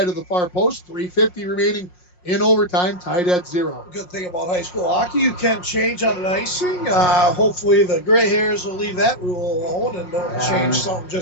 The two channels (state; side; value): late; right; 5.6 ms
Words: of the far post. 3:50 remaining in overtime, tied at 0. Good thing about high school hockey, you can change on an icing. Hopefully the gray hairs will leave that rule alone and don't change something